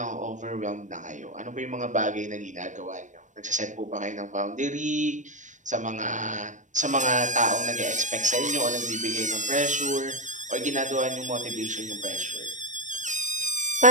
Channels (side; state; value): left; late; 0.36 ms